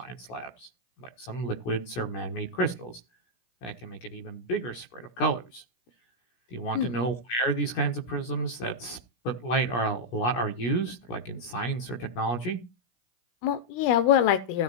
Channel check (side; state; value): right; late; 17 ms